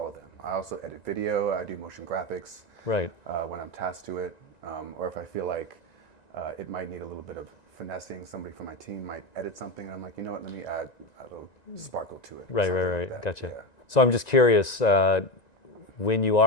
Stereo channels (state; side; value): late; right; 1.9 ms